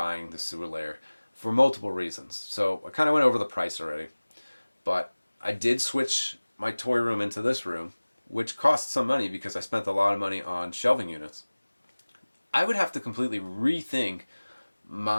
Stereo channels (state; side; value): inverted; both; correlation -1.00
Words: the sewer layer for multiple reasons. So I kind of went over the price already, but I did switch my toy room into this room, which cost some money because I spent a lot of money on shelving units. I would have to completely rethink